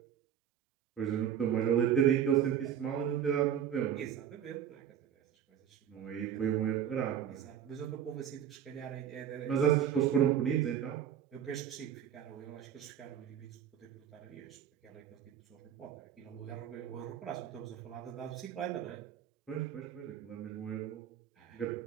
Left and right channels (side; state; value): left; quieter; 9.2 dB